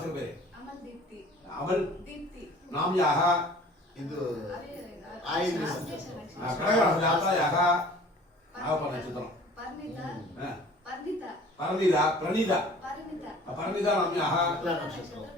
पेरे अमल नाम्याः इदु आयिन कनक जातायाः आवपन चित्रम परिणीता नाम्याः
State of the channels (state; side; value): normal; both; correlation 0.48